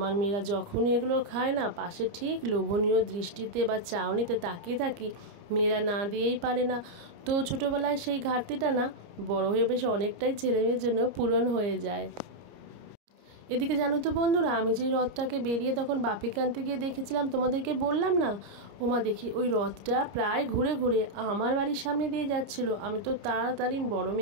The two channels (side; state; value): left; late; 30 ms